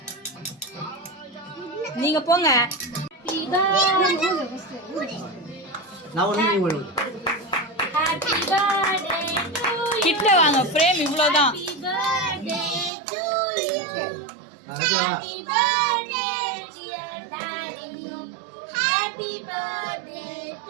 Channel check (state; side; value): drops out; left; at 12.9 s